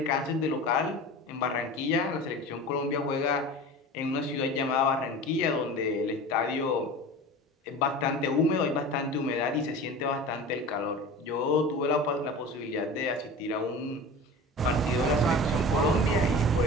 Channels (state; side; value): normal; both; correlation 0.35